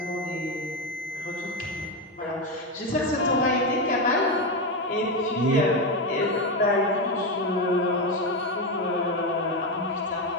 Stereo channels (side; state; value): both; normal; correlation 0.11